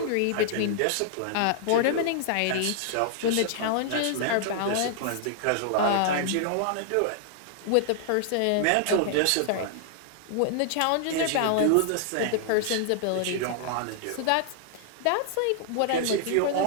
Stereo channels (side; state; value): both; different; correlation -0.01